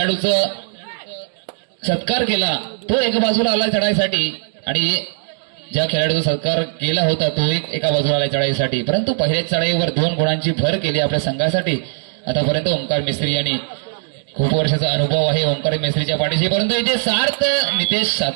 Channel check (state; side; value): silent; left; 61 dB below the other